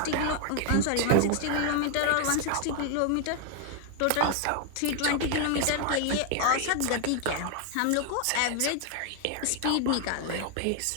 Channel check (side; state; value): both; different; correlation 0.00